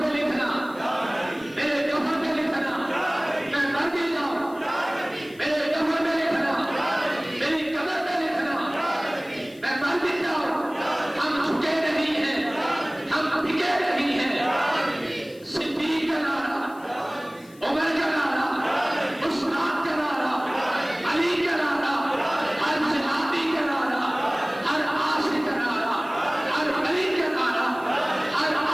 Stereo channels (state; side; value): noise; left; hiss, 26 dB below the sound